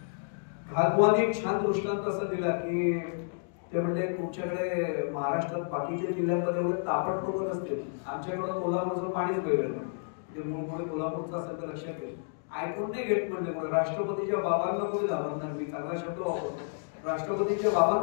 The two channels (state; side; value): silent; right; digital silence